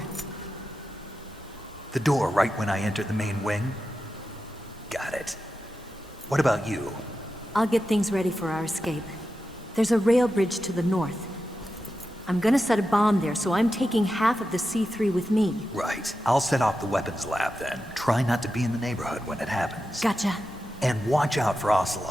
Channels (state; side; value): normal; both; correlation 0.90